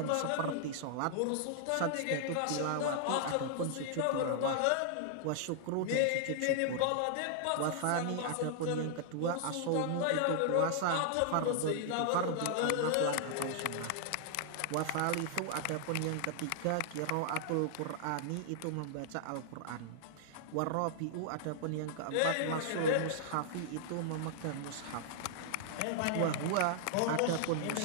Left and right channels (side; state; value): both; different; correlation -0.01